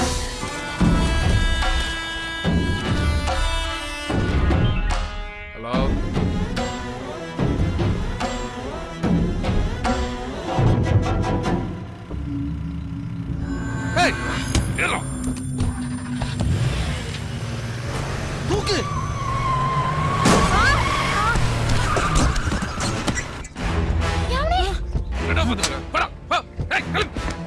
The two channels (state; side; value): identical; both; correlation 1.00